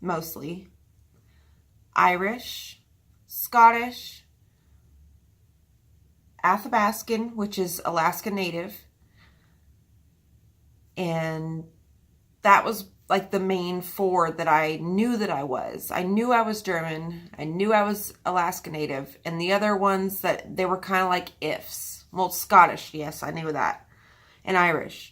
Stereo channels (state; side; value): identical; both; correlation 1.00